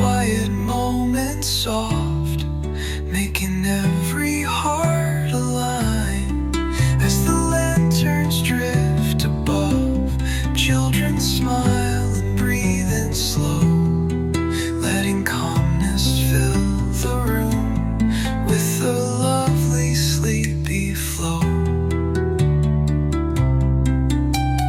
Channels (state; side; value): identical; both; correlation 1.00